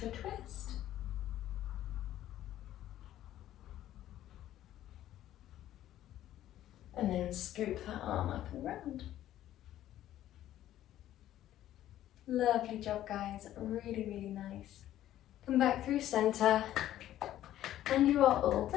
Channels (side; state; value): right; quieter; 12.9 dB